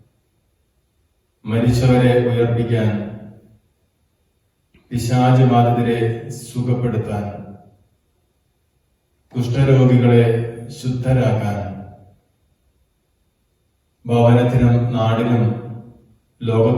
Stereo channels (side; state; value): both; identical; correlation 1.00